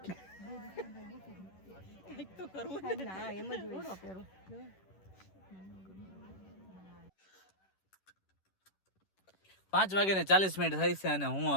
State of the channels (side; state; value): right; late; 11 ms